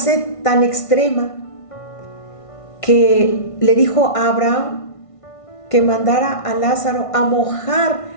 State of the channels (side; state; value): right; late; 1.5 ms